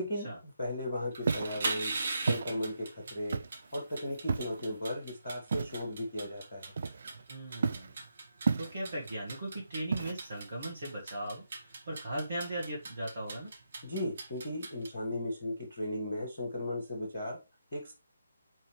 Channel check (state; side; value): inverted; both; correlation -0.82